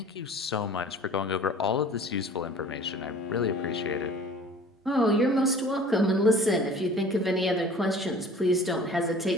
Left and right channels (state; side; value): normal; both; correlation 0.46